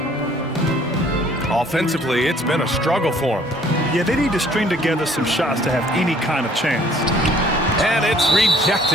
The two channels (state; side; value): normal; both; correlation 0.58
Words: Offensively, it's been a struggle for him. Yeah, they need to string together some shots to have any kind of chance. And it's